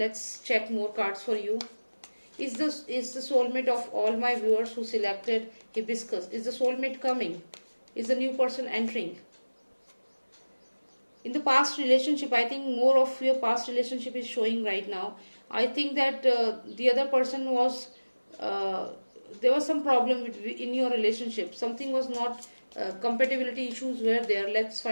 check more cards for you. Is the soulmate of all my viewers who selected hibiscus, is the soulmate coming? Is the new person entering? In the past relationship, I think more of your past relationship is showing right now. I think that the other person was uh, there was some problem in your relationship. Something was not compatibility issues were there. Let's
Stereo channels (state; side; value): inverted; both; correlation -1.00